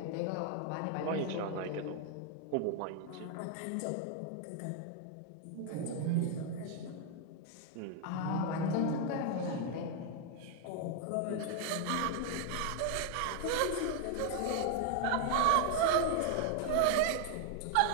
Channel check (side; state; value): both; different; correlation 0.00